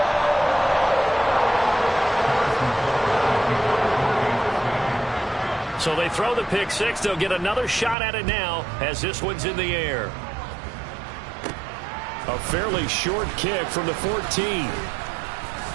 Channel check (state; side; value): drops out; left; at 8.0 s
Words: So they throw the pick 6. They'll get another shot at it now as this one's in the air. A fairly short kick from the 14.